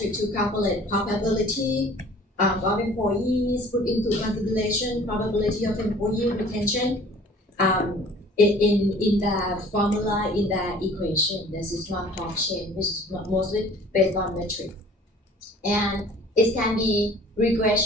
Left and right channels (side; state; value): both; normal; correlation 0.50